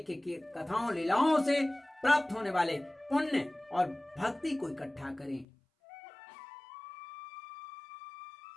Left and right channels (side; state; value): right; drops out; at 5.5 s